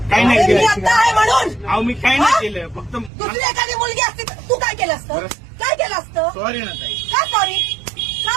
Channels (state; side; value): drops out; left; at 3.1 s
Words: काही नाही मी केलं. आता आहे म्हणून. अहो मी काही नाही केलं, फक्त दुसरी एखादी मुलगी असती तर तू काय केलं असतं? काय केलं असतं? सॉरी ना ताई. का सॉरी?